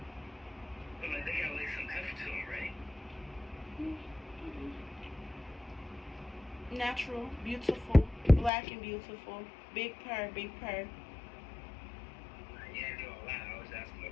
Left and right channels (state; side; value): drops out; right; at 8.5 s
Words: But like, they got like some heft to them, right? Natural, beautiful, black and beautiful. Big purr, big purr. You ain't doing a lot. I was asking